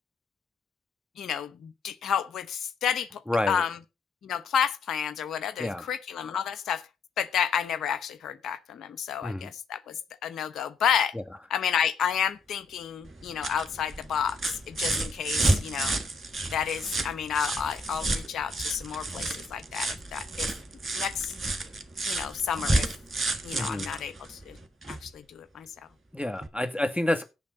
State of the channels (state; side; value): quieter; right; 3.6 dB